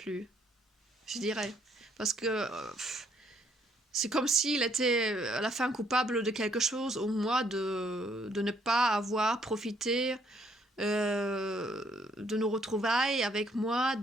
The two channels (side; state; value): both; normal; correlation 0.68